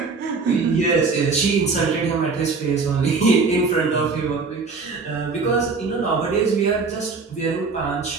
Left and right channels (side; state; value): left; quieter; 4.4 dB